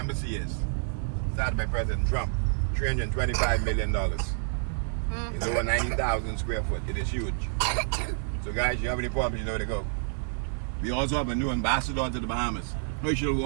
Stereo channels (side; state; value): left; silent; 58 dB below the other